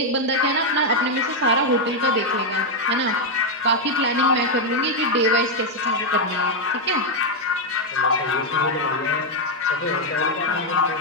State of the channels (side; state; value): both; normal; correlation 0.01